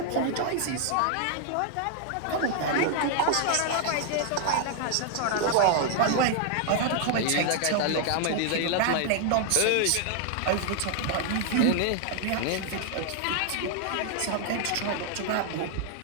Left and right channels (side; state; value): both; different; correlation 0.00